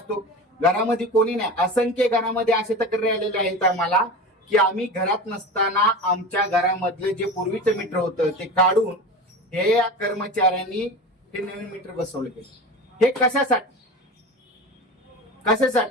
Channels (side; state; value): both; normal; correlation 0.30